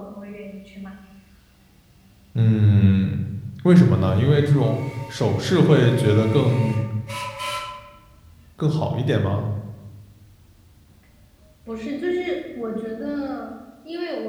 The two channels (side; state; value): both; identical; correlation 1.00